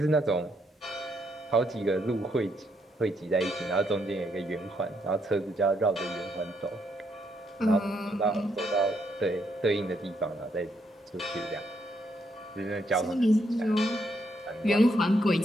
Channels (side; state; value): both; normal; correlation 0.75